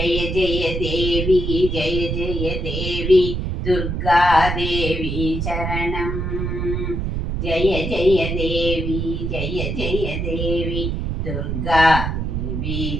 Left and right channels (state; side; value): noise; right; rumble, 2 dB below the sound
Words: ஜெய தேவி ஜெய ஜெய தேவி துர்கா தேவி சரணம் ஜெய ஜெய தேவி ஜெய ஜெய தேவி துர்கா தேவி